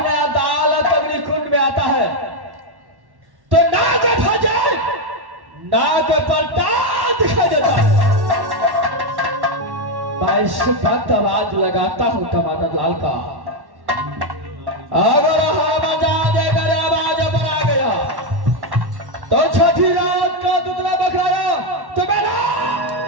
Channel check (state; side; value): late; left; 1.1 ms